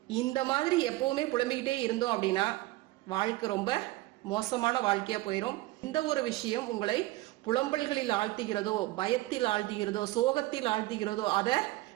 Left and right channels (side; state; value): left; quieter; 18.5 dB